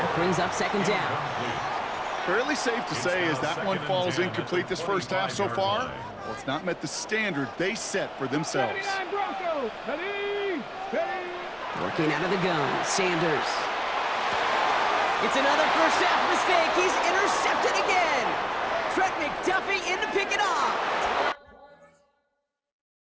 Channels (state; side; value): identical; both; correlation 1.00